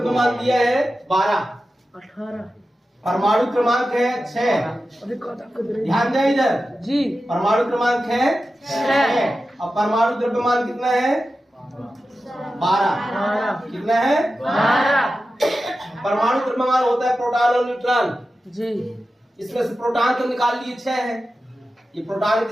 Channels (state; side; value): normal; both; correlation 0.93